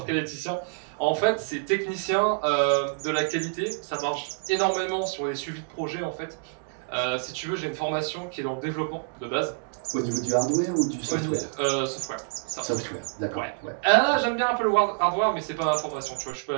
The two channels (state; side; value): silent; left; digital silence